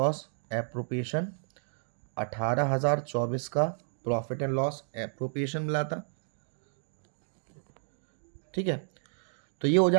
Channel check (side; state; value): left; silent; digital silence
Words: appropriation 18,024 का प्रॉफिट एंड लॉस एप्रोप्रिएशन मिला था। ठीक है, तो ये हो